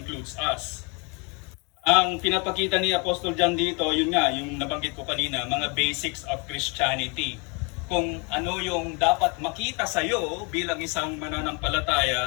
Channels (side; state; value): right; quieter; 31.2 dB